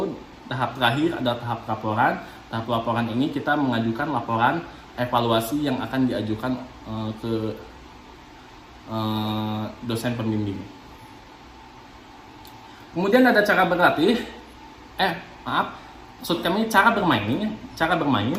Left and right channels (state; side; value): identical; both; correlation 1.00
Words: tahap terakhir adalah tahap laporan. Tahap laporan ini kita mengajukan laporan evaluasi yang akan diajukan ke dosen pembimbing. Kemudian ada cara berlatih. Maksud kami cara bermain. Cara